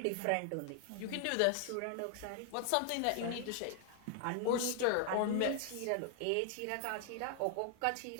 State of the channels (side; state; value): both; different; correlation 0.00